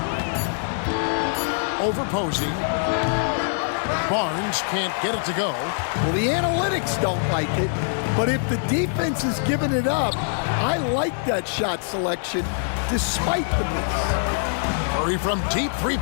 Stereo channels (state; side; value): silent; right; digital silence